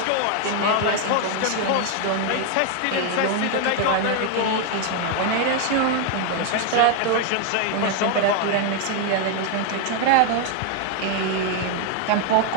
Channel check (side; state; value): both; different; correlation 0.01